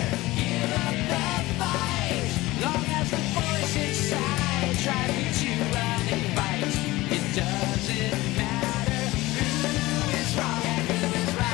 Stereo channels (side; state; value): right; quieter; 19.2 dB